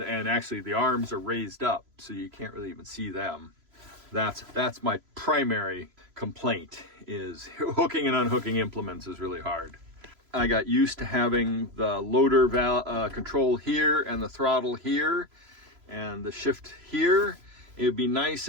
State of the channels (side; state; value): left; late; 3.0 ms